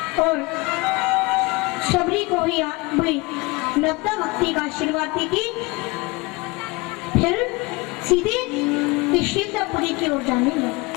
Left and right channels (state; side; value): quieter; right; 25.0 dB